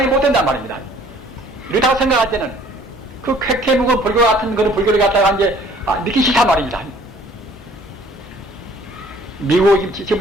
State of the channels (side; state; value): both; normal; correlation 0.55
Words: 못 된단 말입니다. 이렇다고 생각할 때는 그 쾌쾌 묵은 불교 같은 그런 불교를 갖다가 이제 믿기 싫단 말입니다. 미국